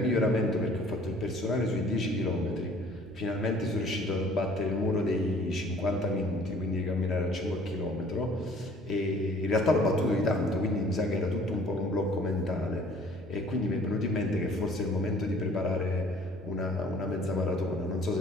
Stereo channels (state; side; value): normal; both; correlation 0.54